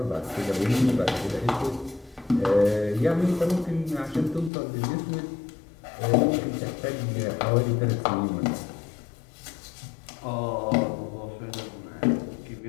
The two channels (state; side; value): drops out; right; at 4.5 s